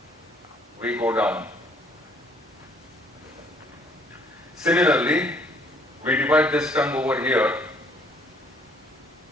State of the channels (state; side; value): normal; both; correlation 0.62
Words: we go down. Similarly, we divide this tongue over here